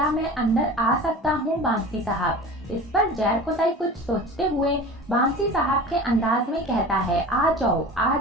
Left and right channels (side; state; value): both; normal; correlation 0.37